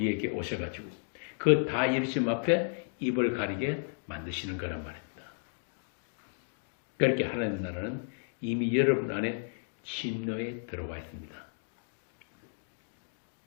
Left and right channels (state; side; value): silent; right; digital silence